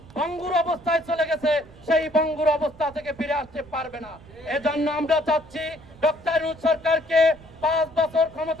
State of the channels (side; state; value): right; noise; rumble, 22 dB below the sound